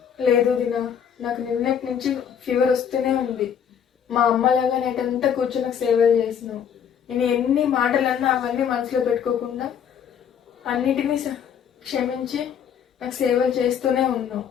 లేదు వదినా, నాకు నిన్నటి నుంచి ఫీవర్ వస్తూనే ఉంది. మా అమ్మలాగా నైట్ అంతా కూర్చొని నాకు సేవలు చేసినావు. నేను ఎన్ని మాటలన్నా అవన్నీ మనసులో పెట్టుకోకుండా అన్నిటినీ క్షమించి నాకు సేవలు చేస్తూనే ఉన్నావు.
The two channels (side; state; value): right; quieter; 8.2 dB